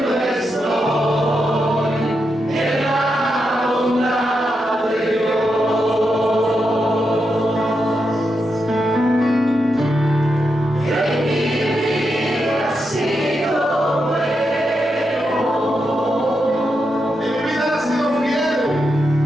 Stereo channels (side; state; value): both; normal; correlation 0.85